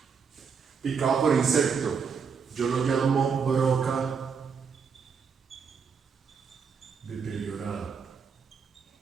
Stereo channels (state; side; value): quieter; left; 6.1 dB